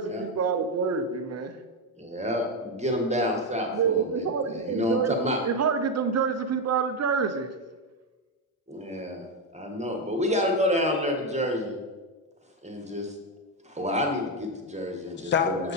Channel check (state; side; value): normal; both; correlation 0.08